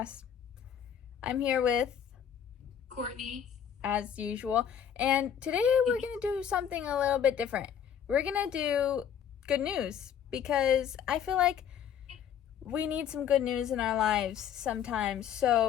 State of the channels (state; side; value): quieter; right; 8.7 dB